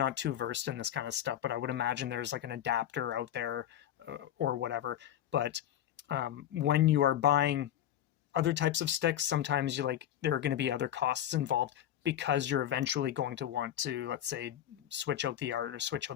too versed in this kind of stuff, but I would imagine there's like an adapter out there or whatever. But when you are buying other types of sticks, sometimes there are going to be other costs involved because you're eventually going to want to, let's say, switch out the art or switch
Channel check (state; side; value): quieter; right; 11.4 dB